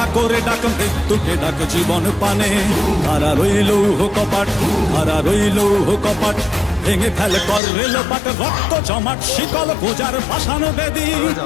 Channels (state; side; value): drops out; right; at 7.6 s